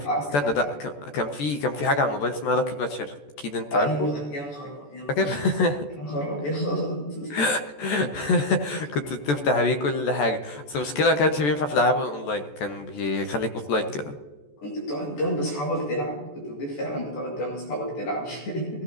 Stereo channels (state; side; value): late; right; 14 ms